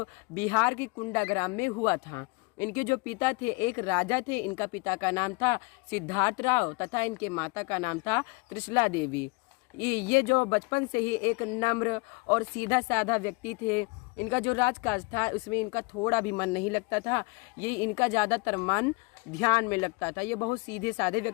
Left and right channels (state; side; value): quieter; right; 27.3 dB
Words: बिहार की कुंडा ग्राम में हुआ था। इनके जो पिता थे एक राजा थे। इनका पिता का नाम था सिद्धार्थ राव तथा इनके माता का नाम था त्रिशला देवी। ये जो बचपन से ही एक नम्र और सीधा साधा व्यक्ति थे। इनका जो राजकाज था उसमें इनका थोड़ा भी मन नहीं लगता था। ये इनका ज़्यादातर मन ध्यान में लगता था। ये बहुत सीधे साधे